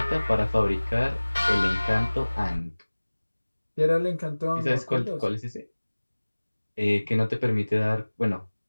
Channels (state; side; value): inverted; both; correlation -1.00